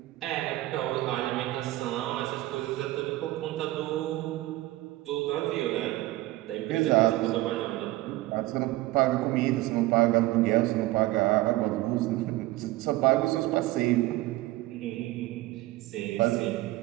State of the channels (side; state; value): left; quieter; 17.8 dB